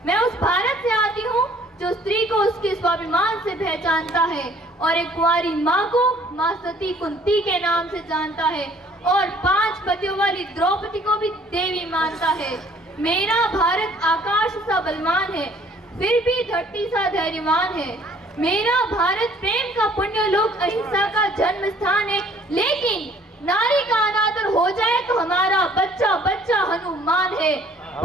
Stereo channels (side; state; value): both; normal; correlation 0.57